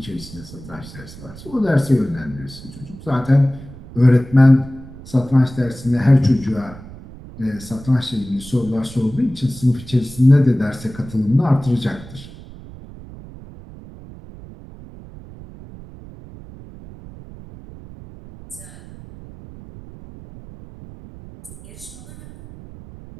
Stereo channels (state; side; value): noise; right; rumble, 17 dB below the sound